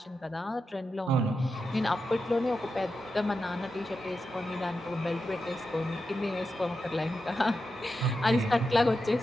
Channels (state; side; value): normal; both; correlation 0.89